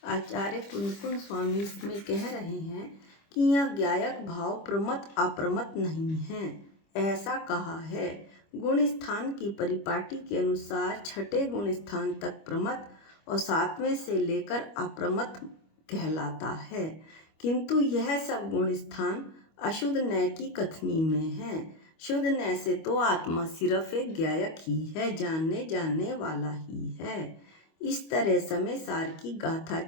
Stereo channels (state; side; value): late; right; 25 ms